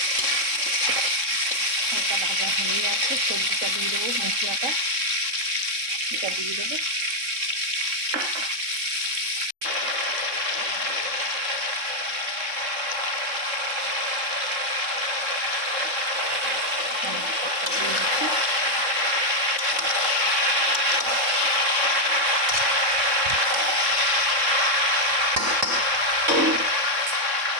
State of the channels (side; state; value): left; late; 3.6 ms